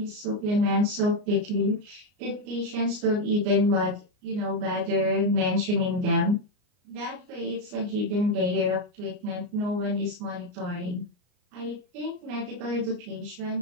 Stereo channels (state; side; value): late; left; 33 ms